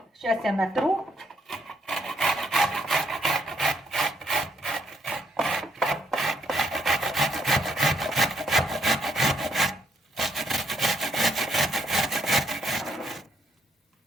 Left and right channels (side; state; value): both; normal; correlation 0.72